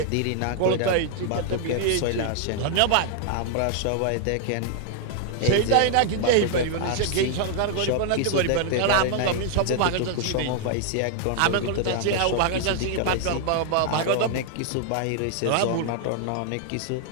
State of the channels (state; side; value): different; both; correlation 0.00